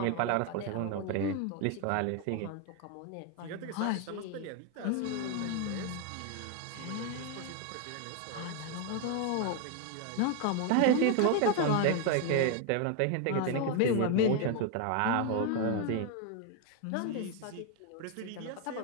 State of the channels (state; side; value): different; both; correlation 0.01